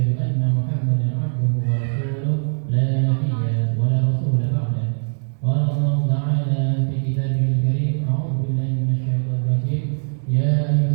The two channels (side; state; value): left; silent; digital silence